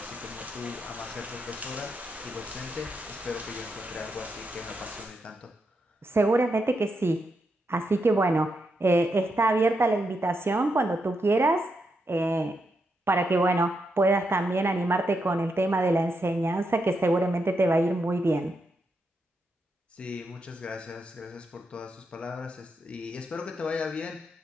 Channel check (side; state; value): both; normal; correlation 0.83